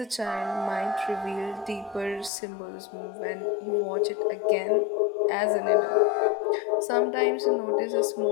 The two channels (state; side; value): drops out; right; at 2.3 s